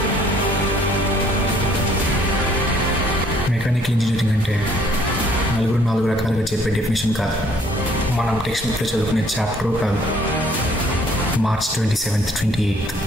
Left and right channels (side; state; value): both; normal; correlation 0.61